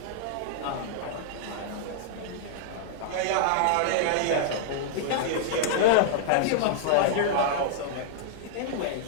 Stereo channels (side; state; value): both; different; correlation -0.01